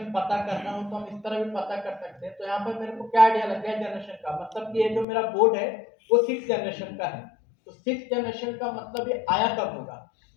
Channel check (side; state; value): right; drops out; at 5.1 s